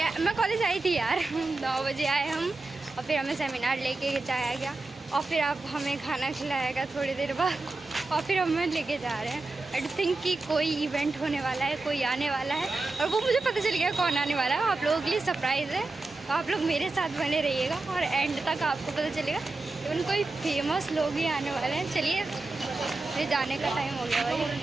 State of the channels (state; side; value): quieter; left; 3.3 dB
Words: मैं कॉलेज आई थी यार 9 बजे आए हम और फिर हमें सेमिनार लेके जाया गया और फिर आप हमें खाना खिलाएगा थोड़ी देर बाद और फिर हमें लेके जा रहे हैं। आई थिंक कि कोई इवेंट होने वाला है, कोई आने वाला है और वो मुझे पता चल गया कौन आने वाला है। आप लोगों के लिए सरप्राइज़ है तो आप लोग मेरे साथ बने रहिएगा और एंड तक आपको पता चलेगा। इवन कोई फेमस लोग ही आने वाले हैं। चलिए ये जाने का टाइम हो गया भाई।